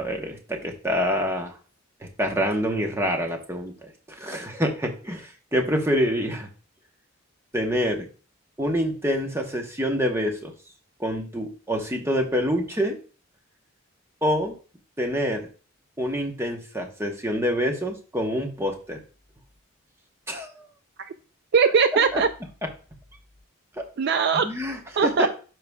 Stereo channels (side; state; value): both; normal; correlation 0.33